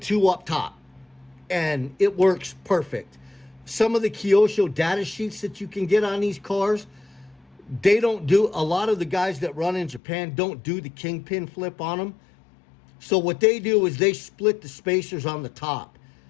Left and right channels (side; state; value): right; drops out; at 10.0 s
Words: up top. And it works perfect. Some of the Kyosho data sheets that you can get on these cars, they don't do, a lot of the guys that run in Japan don't do the kingpin flip on them. So what they do is they split the spacers on the top.